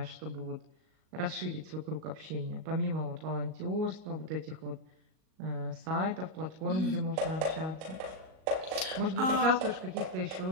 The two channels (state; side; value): late; left; 38 ms